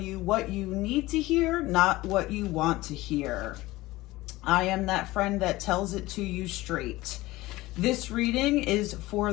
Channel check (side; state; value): right; quieter; 18.8 dB